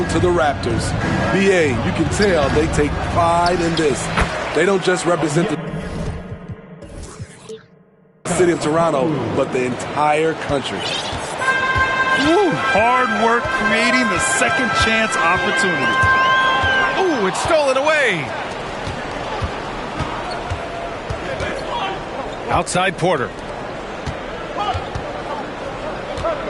to the Raptors. BA, you can tell they take pride in this. They don't just represent the city of Toronto, but the entire country. Woo, hard work creating the second chance opportunity. Ooh, it's stolen away. Outside Porter.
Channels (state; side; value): identical; both; correlation 1.00